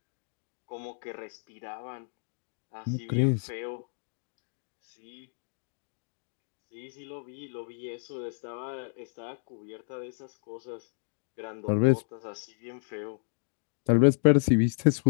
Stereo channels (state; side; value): silent; right; digital silence